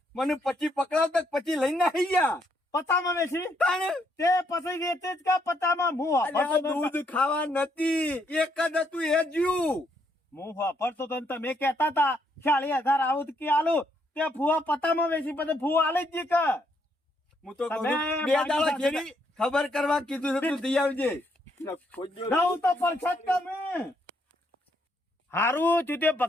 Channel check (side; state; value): both; normal; correlation 0.73